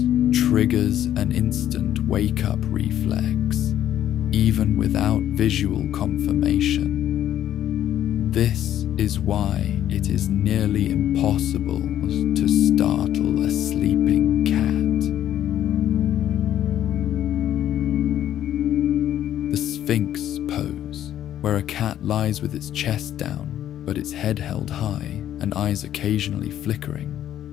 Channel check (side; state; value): right; quieter; 11.3 dB